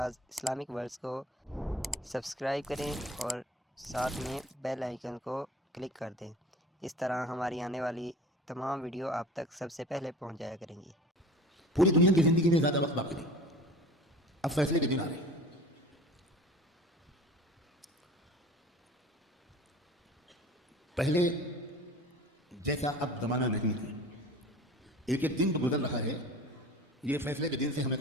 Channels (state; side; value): normal; both; correlation 0.40